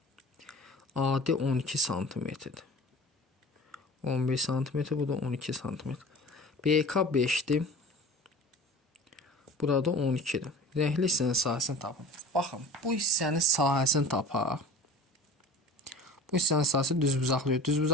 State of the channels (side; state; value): both; normal; correlation 0.39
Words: AD 12 cm-dir. 11 cm, bu da 12 cm. BK 5-dir. Burada 12-dir. Rəngli hissənin sahəsini tapın. Baxın, bu hissənin sahəsini tapaq. Bu hissənin sahəsi düzbucaqlı.